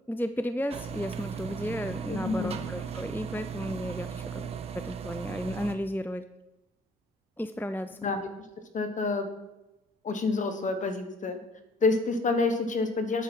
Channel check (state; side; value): normal; both; correlation 0.60